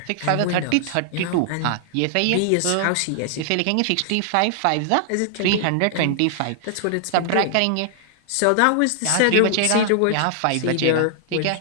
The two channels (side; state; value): both; different; correlation -0.01